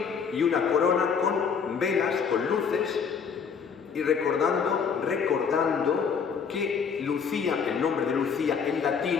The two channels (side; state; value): right; quieter; 6.3 dB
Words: y una corona con velas, con luces, y recordando que Lucía, el nombre de Lucía en